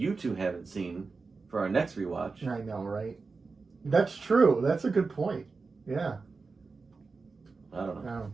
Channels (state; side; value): quieter; left; 4.3 dB